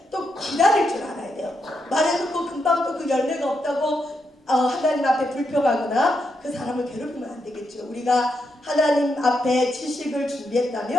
또 기다릴 줄 알아야 돼요. 말해놓고 금방 또 그 열매가 없다고 하나님 앞에 불평하거나 그 사람을 괴롭히면 안 되겠죠. 우리가 하나님 앞에 지식을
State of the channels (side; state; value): both; normal; correlation 0.82